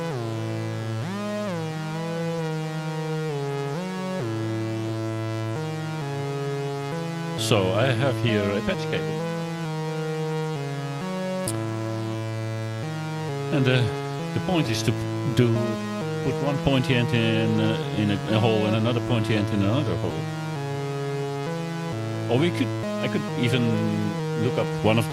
So I have here a patch cable. And the point is to put one pointy end in a hole and another pointy end in another hole. Or I could even look up one of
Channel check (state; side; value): identical; both; correlation 1.00